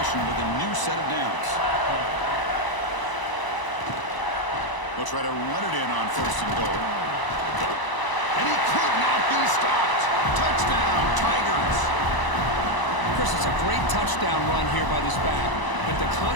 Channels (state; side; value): late; right; 1.0 ms